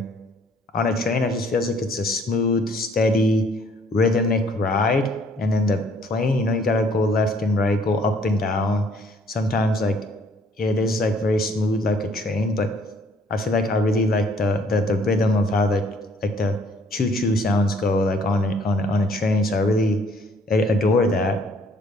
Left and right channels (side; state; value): both; normal; correlation 0.61